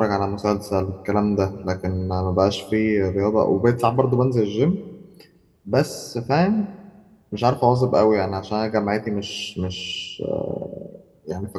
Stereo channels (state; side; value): identical; both; correlation 1.00